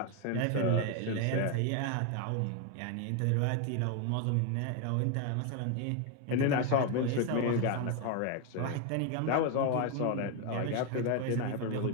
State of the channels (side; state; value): both; different; correlation 0.01